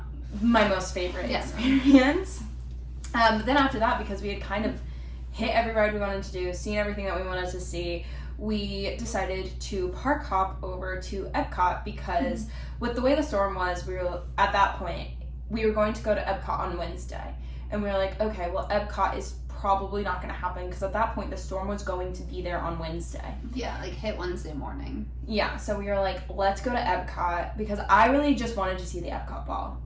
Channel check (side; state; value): both; identical; correlation 1.00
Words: my most favorite experience. But then after that, because we had kind of hit every ride we wanted to do, seen everything that we wanted to see, we decided to park hop over to Epcot because with the way the storm was, we were at that point, we were going to go to Epcot on Wednesday. And we were like, okay, well, Epcot is probably not going to happen because at that point the storm was going to be there on Wednesday. Yeah, like hit Wednesday morning. Yeah, so we were like, let's go to Epcot because I really just wanted to see the Epcot ball.